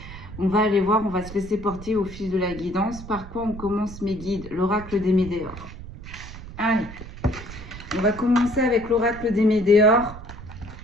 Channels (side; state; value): right; noise; rumble, 13 dB below the sound